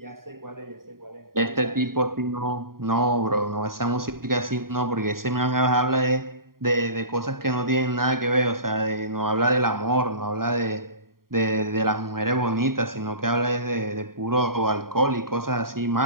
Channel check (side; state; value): left; late; 0.92 ms